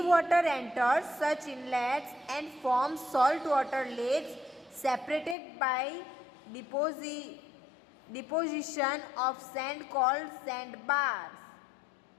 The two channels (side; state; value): right; drops out; at 5.4 s